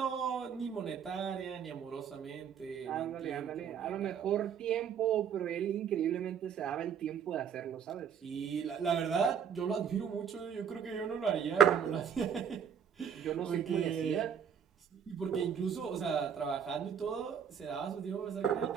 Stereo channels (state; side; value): quieter; left; 7.7 dB